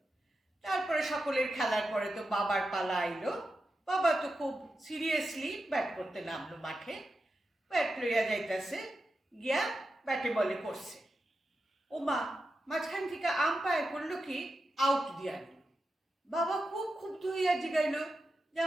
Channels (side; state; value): both; normal; correlation 0.89